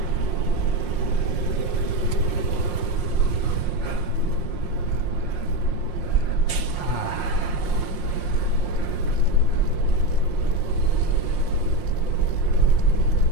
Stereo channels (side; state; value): right; late; 5.6 ms